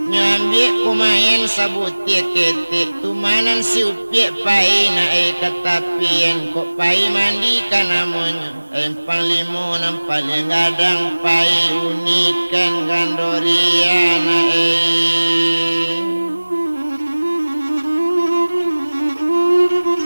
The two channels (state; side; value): inverted; both; correlation -1.00